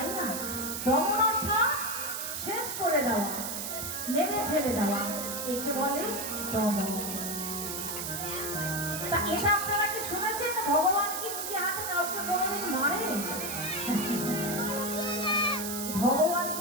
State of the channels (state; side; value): noise; right; hiss, 4 dB below the sound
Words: না? দমন অর্থাৎ শেষ করে দেওয়া, মেরে ফেলে দেওয়া, একে বলে দমন। তা এটা আপনারা কি শুনেছেন ভগবান কি নিজে হাতে কাউকে কোনোদিন মারে? ভগবান